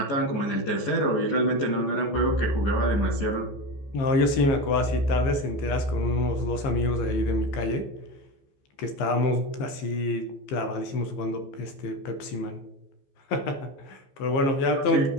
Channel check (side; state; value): right; late; 15 ms